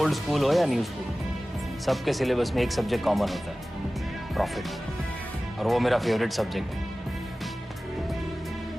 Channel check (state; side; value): normal; both; correlation 0.97